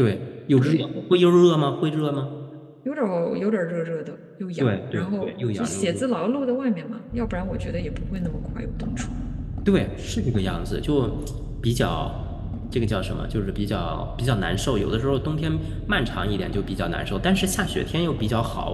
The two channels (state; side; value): identical; both; correlation 1.00